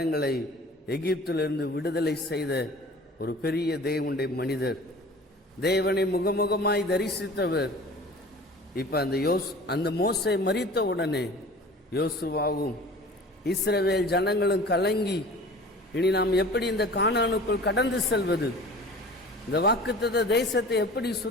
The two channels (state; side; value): normal; both; correlation 0.42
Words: எகிப்திலிருந்து விடுதலை செய்த ஒரு பெரிய தேவனுடைய மனிதர், தேவனை முகமுகமாய் தரிசித்தவர். இப்ப அந்த மோசே மரித்த உடனே யோசுவாவும் இஸ்ரவேல் ஜனங்களும் கலங்கி, இனி நாம் எப்படி இந்த கானானுக்குள் கடந்து செல்வது, இந்த வாக்குத்தத்த தேசத்தை எப்படி